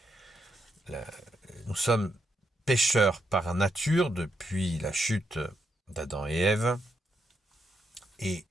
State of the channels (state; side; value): normal; both; correlation 0.80